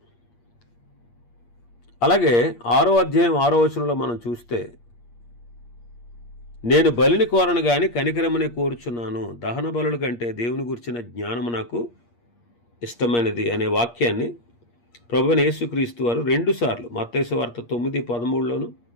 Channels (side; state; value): right; late; 8.5 ms